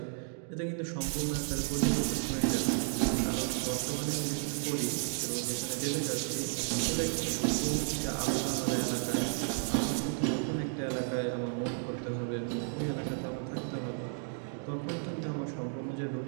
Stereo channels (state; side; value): silent; left; 55 dB below the other